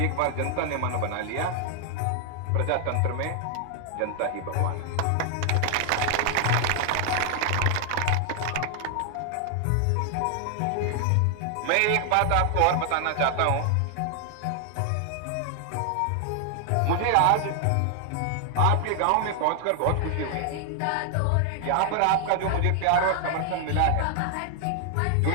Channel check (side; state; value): both; different; correlation 0.00